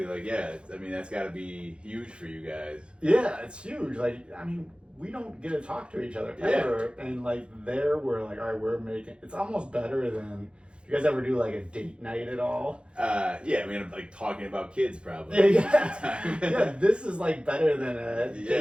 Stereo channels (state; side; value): late; left; 0.056 ms